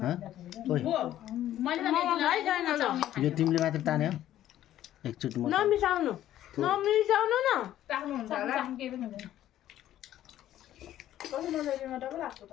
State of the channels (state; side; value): quieter; right; 12.6 dB